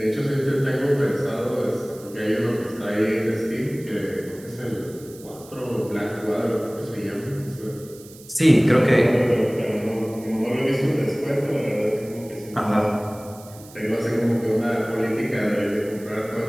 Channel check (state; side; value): noise; right; hiss, 21 dB below the sound